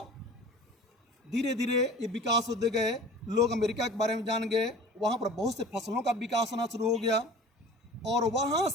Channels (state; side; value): normal; both; correlation 0.42